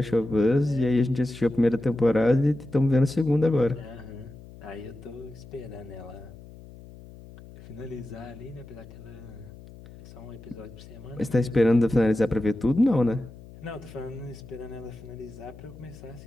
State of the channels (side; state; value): left; noise; hum, 18 dB below the sound